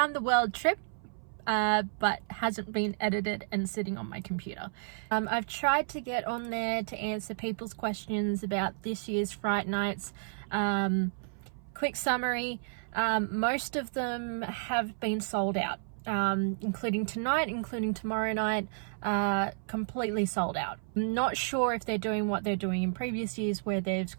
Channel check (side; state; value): left; silent; 57 dB below the other